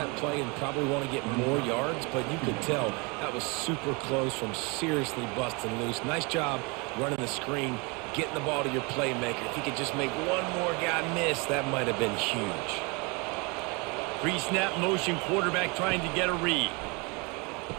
play and probably want to get more yards, but you could tell that was super close from seriously busting loose. Nice job running the screen, getting the ball to your playmaker. If he could just make one more guy miss, that might have been huge. Pre-snap motion, quarterback trying to get a read.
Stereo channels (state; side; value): quieter; left; 29.6 dB